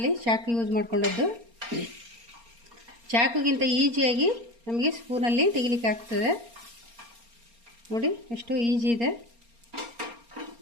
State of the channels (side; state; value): left; late; 4.3 ms